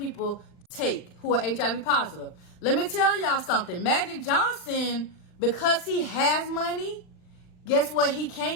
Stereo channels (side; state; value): right; late; 39 ms